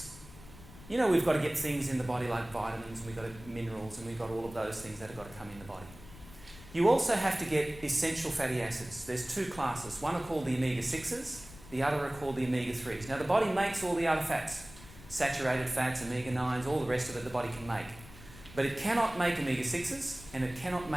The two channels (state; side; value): noise; left; rumble, 18 dB below the sound